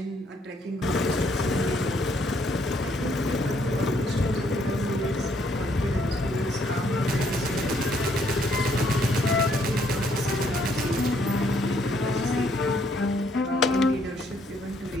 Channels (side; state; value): both; normal; correlation 0.69